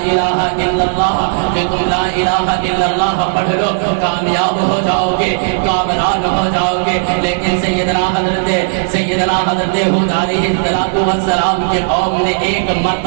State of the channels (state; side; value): silent; left; digital silence